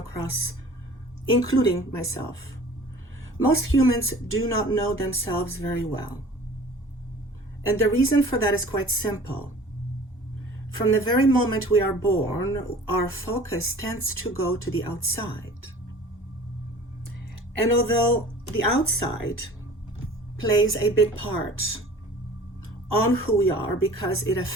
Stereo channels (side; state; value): both; normal; correlation 0.45